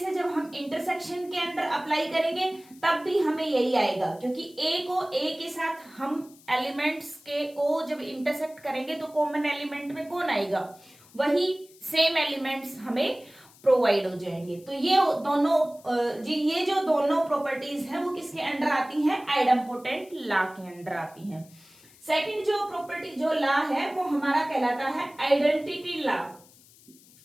जब हम इंटरसेक्शन के अंदर अप्लाई करेंगे तब भी हमें यही आएगा, क्योंकि ए को ए के साथ हम एलिमेंट्स के को जब इंटरसेक्ट करेंगे तो कॉमन एलिमेंट में कौन आएगा? वही सेम एलिमेंट्स हमें प्रोवाइड हो जाएंगे। तो ये जो दोनों प्रॉपर्टीज हैं वो किसके अंडर आती हैं? आइडेम्पोटेंट लॉ के अंडर आती हैं। सेकंड जो प्रॉपर्टी जो लॉ है वो हमारा कहलाता है आइडेंटिटी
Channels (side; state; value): left; noise; hiss, 25 dB below the sound